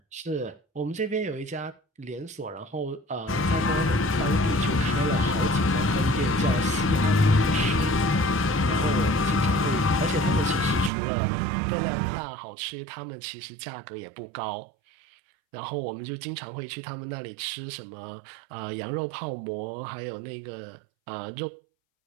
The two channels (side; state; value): left; drops out; at 10.9 s